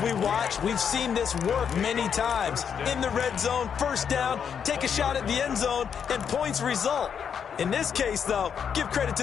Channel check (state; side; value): quieter; right; 7.5 dB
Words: we watch, we've seen this work many times. In the red zone, 1st down, take a shot at the end zone, and points result. In this case, though, give credit